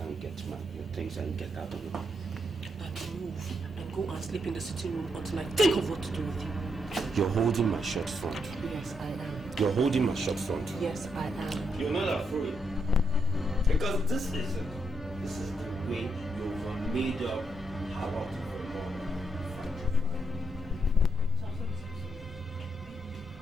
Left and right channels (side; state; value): both; normal; correlation 0.79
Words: get your things and get out of here. And move and go and sleep in the sitting room until I think of what to do with you. You're holding my short front. Yes, I am. You're holding my short front. Yes, I am. You're not afraid. Because this is the way you've made up how to